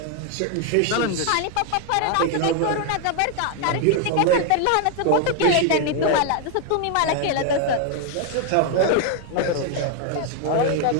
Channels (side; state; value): both; different; correlation 0.00